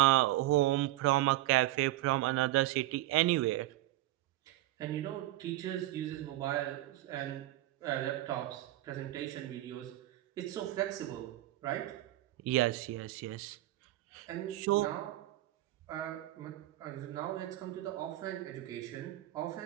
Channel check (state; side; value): quieter; left; 16.2 dB